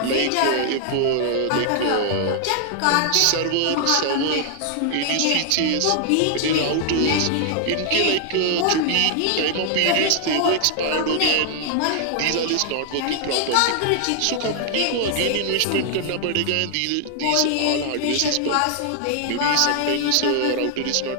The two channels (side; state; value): both; different; correlation 0.00